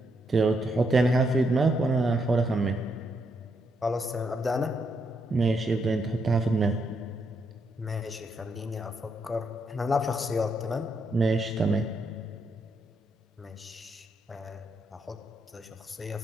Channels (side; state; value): both; normal; correlation 0.78